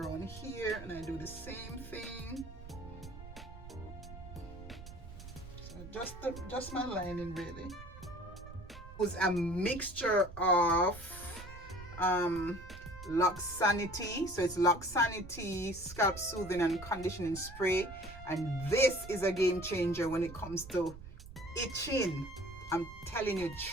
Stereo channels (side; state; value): right; noise; rumble, 14 dB below the sound